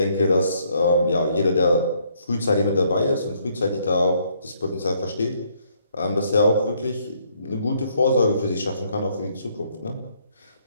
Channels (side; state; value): both; inverted; correlation -0.69